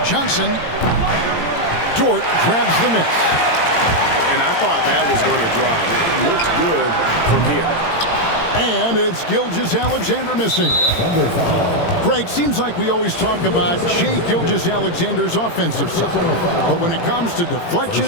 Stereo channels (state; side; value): late; right; 18 ms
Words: Johnson. Dort grabs the miss. And I thought that was going to drop. It looked good from here. And it's Gilgeous-Alexander missing. Greg, seems like we always talk about Shai Gilgeous-Alexander's offensive side. But when it comes to